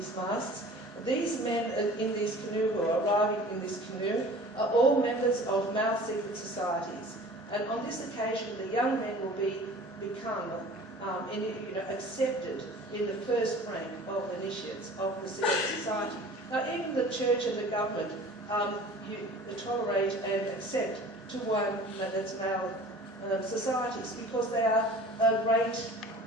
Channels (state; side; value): normal; both; correlation 0.44